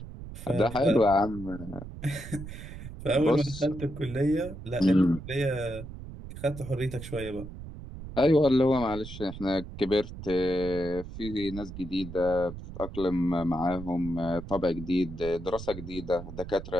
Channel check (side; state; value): right; noise; rumble, 11 dB below the sound